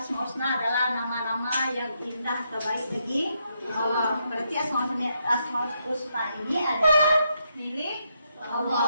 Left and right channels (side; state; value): both; inverted; correlation -0.79